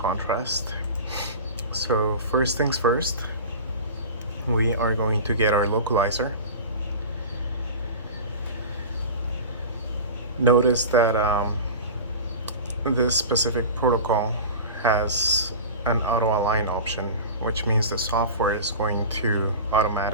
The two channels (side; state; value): both; inverted; correlation -0.33